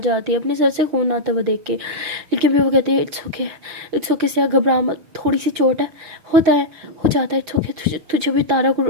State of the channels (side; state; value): left; late; 6.2 ms